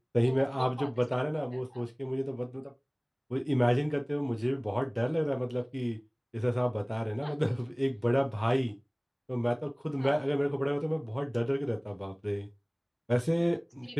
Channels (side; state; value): both; identical; correlation 1.00